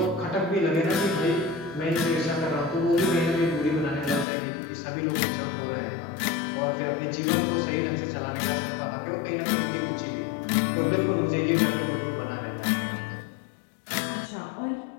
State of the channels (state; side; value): drops out; right; at 4.2 s